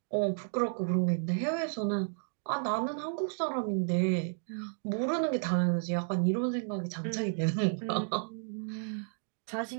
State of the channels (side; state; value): left; silent; digital silence